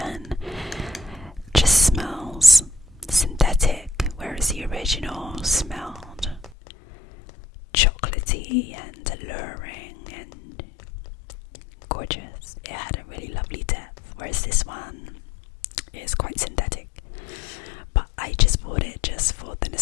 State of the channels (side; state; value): right; drops out; at 6.6 s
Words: just smells synthetic, whereas the original smelled chocolatey and alluring and gorgeous. It had a really lovely depth, whereas this one is quite synthetic. But I just bought it just for the